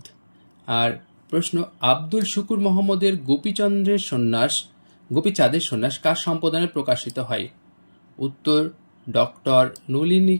আর প্রশ্ন, আব্দুল শুকুর মোহাম্মদের গোপীচাঁদের সন্ন্যাস কার সম্পাদনায় প্রকাশিত হয়? উত্তর ডক্টর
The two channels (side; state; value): both; inverted; correlation -1.00